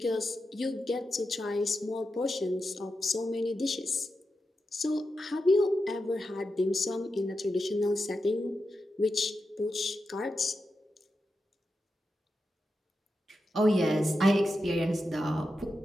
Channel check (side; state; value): both; normal; correlation 0.89